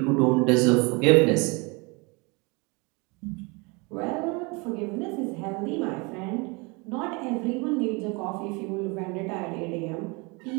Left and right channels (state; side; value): quieter; left; 28.8 dB